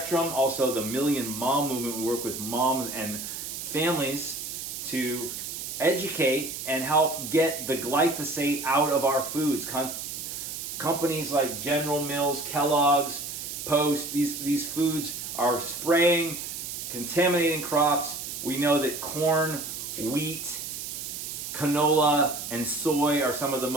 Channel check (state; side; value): noise; right; hiss, 7 dB below the sound